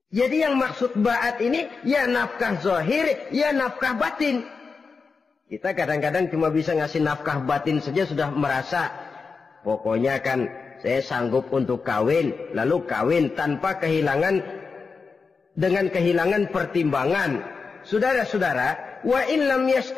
Jadi yang maksud ba'at ini ya nafkah zahir, ya nafkah batin. Kita kadang-kadang cuma bisa ngasih nafkah batin saja sudah merasa pokoknya kan saya sanggup untuk kawin, lalu kawin tanpa kehilangan, dengan kehilangan pertimbangan. Saudara-saudara, wa in lam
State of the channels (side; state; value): right; quieter; 4.8 dB